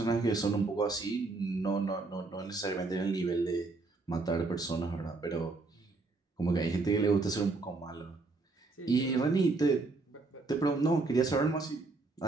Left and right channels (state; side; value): quieter; left; 3.6 dB